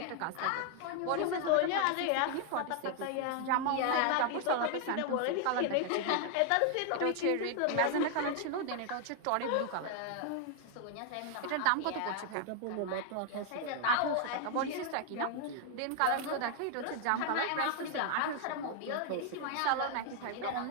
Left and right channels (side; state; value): both; different; correlation 0.00